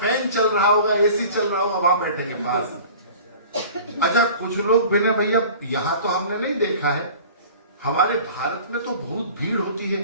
चल रहा होगा, एसी चल रहा होगा, वहां बैठेंगे पास में। अच्छा कुछ लोग बिना भैया, यहां तो हमने नहीं देखा है, हमारे भारत में तो बहुत भीड़ होती है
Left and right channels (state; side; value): inverted; both; correlation -0.43